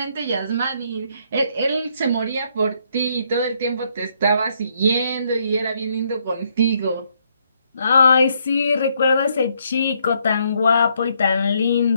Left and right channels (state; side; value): inverted; both; correlation -0.72